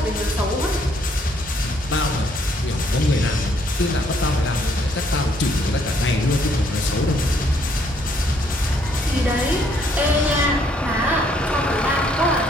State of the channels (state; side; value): normal; both; correlation 0.68